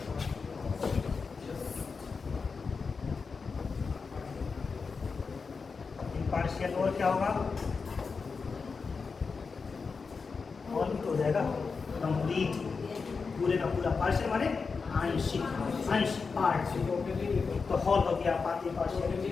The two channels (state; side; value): quieter; right; 4.9 dB